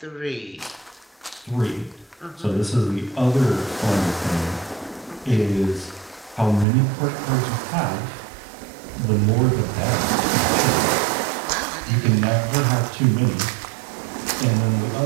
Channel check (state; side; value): drops out; left; at 6.7 s